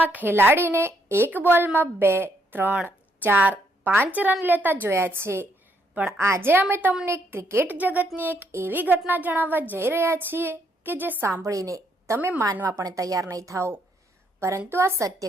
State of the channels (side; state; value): both; normal; correlation 0.73